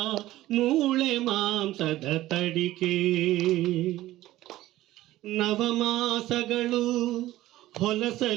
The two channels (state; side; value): quieter; left; 15.7 dB